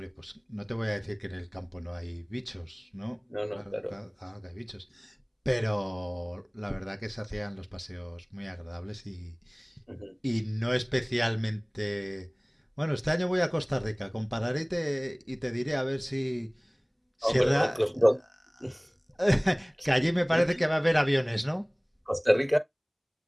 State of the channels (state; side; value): identical; both; correlation 1.00